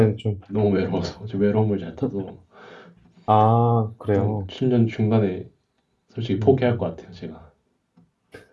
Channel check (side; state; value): both; identical; correlation 1.00